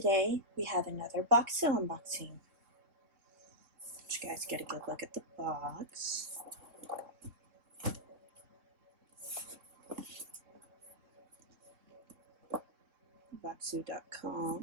we have another Bokksu unboxing. Let you guys get a good look at the box.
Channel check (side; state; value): left; late; 3.6 ms